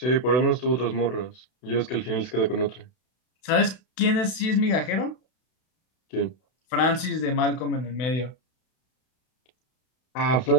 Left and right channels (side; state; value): right; late; 32 ms